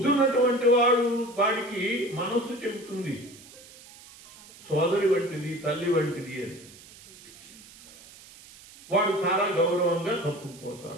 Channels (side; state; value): right; noise; hiss, 21 dB below the sound